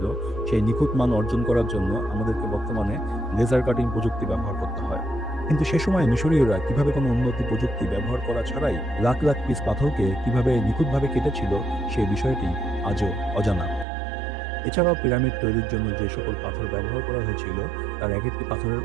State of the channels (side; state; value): left; drops out; at 13.9 s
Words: সেই নিখুঁত মান অর্জন করার জন্য আমাদেরকে বর্তমানে লেজার কাটিং প্রযুক্তি ব্যবহার করতে হয়। কিন্তু সে সময় মিশরীয়রা কিভাবে কোনো উন্নতি প্রযুক্তি ব্যবহার করা ছাড়াই লাখ লাখ পিস পাথরকে কিভাবে নিখুঁতভাবে কেটেছিল, সেই বিষয়টি আজও অজানা। এছাড়াও পিরামিড তৈরির জন্য যে সকল পাথর ব্যবহার করা হয়েছিল তার এক একটি পাথরের